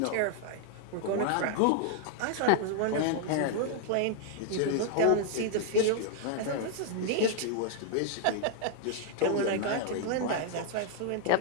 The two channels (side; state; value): both; different; correlation -0.01